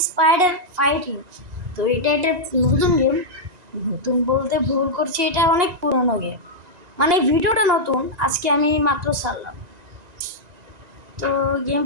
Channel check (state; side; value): late; left; 1.9 ms